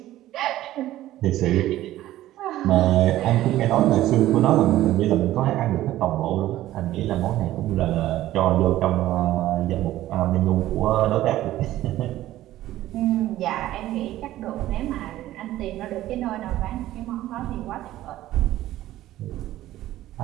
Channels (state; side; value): quieter; left; 14.6 dB